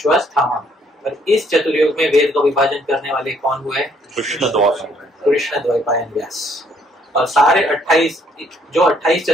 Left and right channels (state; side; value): normal; both; correlation 0.66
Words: और इस चतुर्युग में वेद का विभाजन करने वाले कौन हुए? कृष्ण द्वैपायन व्यास। और सारे 28